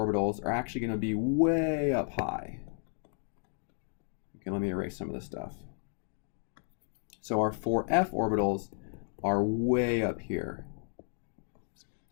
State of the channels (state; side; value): silent; right; 56 dB below the other